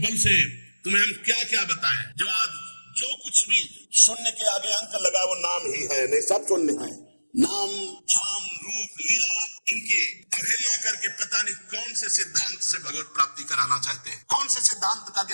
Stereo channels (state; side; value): inverted; both; correlation -1.00